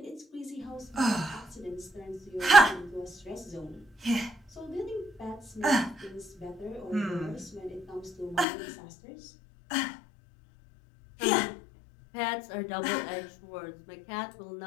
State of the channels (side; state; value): right; drops out; at 8.5 s